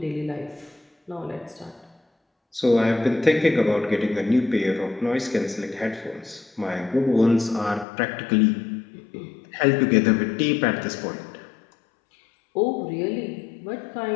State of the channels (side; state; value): right; drops out; at 7.9 s